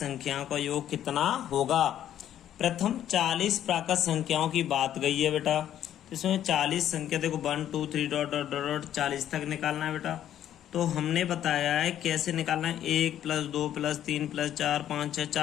का योग कितना होगा। प्रथम 40 प्राकृत संख्याओं की बात गई है बेटा, तो इसमें 40 संख्या देखो 1 2 3 डॉट डॉट डॉट 40 तक निकालना है बेटा। तो हमने बताया है कैसे निकालना है, 1 + 2 + 3 + 4 5 6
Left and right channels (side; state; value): right; quieter; 11.0 dB